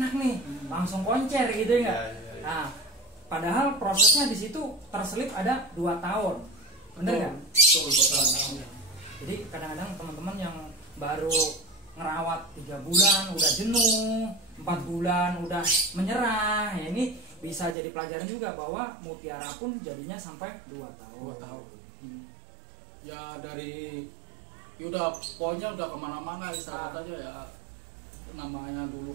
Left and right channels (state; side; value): drops out; left; at 17.8 s